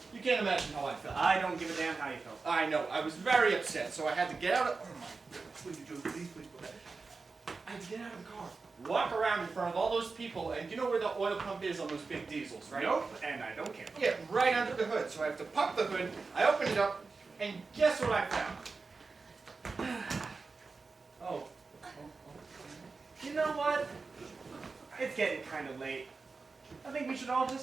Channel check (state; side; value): quieter; left; 4.2 dB